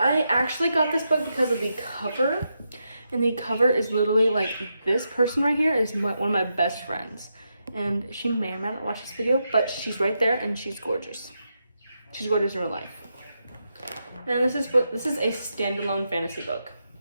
actually got this book because of the cover, and the cover is literally like this person right here is one of my best friends, and she may or may not watch this video, but she's right there and she's gorgeous. She's gorgeous in real life. And this is a standalone fantasy book.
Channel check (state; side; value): inverted; both; correlation -0.84